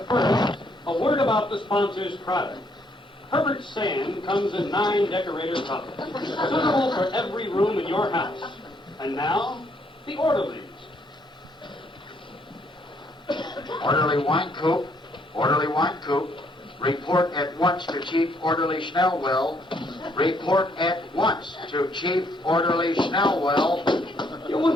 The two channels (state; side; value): normal; both; correlation 0.70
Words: first, a word about the sponsor's product. Herbert Sand comes in 9 decorator cups, suitable for every room in your house. And now, the orderlies. Orderly wine coop, orderly wine coop. Report at once to Chief Orderly Schnellwell. Report at once to Chief Orderly Schnellwell.